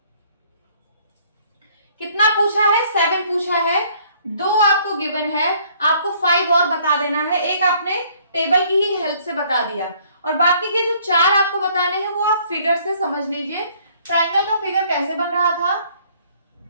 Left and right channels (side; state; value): both; inverted; correlation -0.61